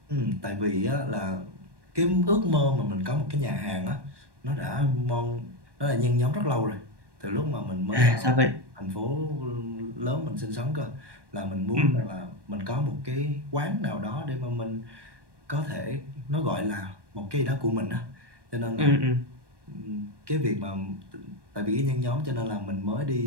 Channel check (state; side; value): late; left; 1.2 ms